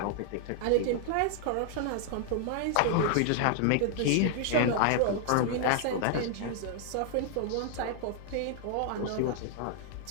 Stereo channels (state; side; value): different; both; correlation 0.00